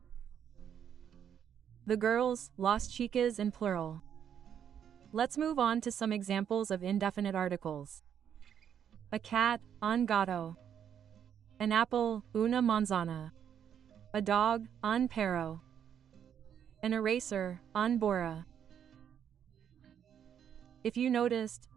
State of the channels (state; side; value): quieter; left; 8.8 dB